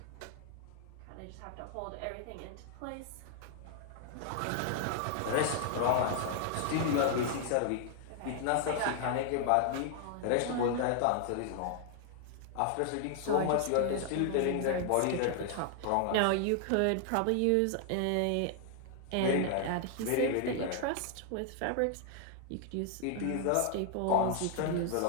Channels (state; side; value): different; both; correlation 0.00